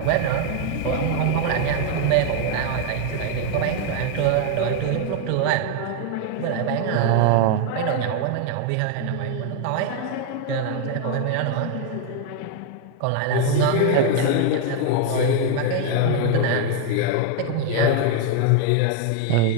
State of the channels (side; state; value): both; different; correlation 0.00